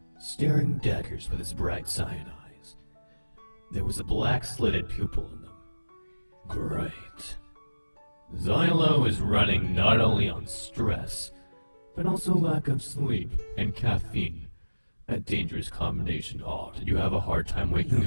staring daggers with his bright cyan eyes. There was a black slitted pupil in them. Great. Zielo is running not only on stress, but also lack of sleep and caffeine. A dangerous combination. Oh, did you have a hard time waking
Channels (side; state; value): both; inverted; correlation -1.00